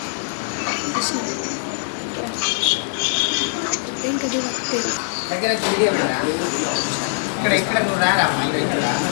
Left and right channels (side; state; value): right; silent; digital silence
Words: దగ్గర వీడియో ఉన్నారా? ఇక్కడ నువ్వు రారా